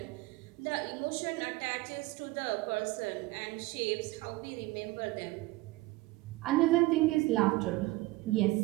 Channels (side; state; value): left; quieter; 20.5 dB